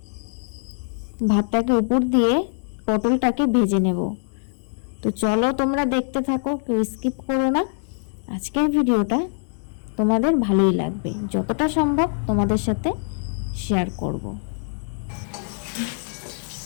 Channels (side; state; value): right; silent; digital silence